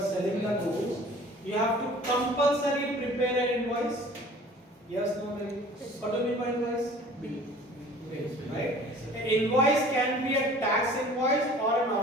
have to compulsory prepare an invoice. Yes, no, maybe. What do you mean by invoice? Bill. Right? An invoice can be a tax invoice or a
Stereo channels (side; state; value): both; normal; correlation 0.47